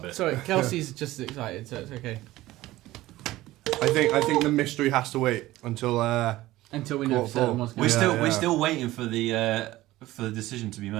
it. Sorry, Kelsey's just as excited, so it's okay. I think the mystery has to wait until we know for certain what's going We're still waiting for the decision to be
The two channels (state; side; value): quieter; left; 16.9 dB